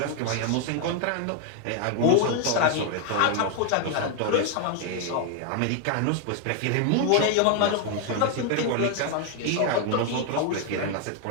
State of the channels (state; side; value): different; both; correlation 0.00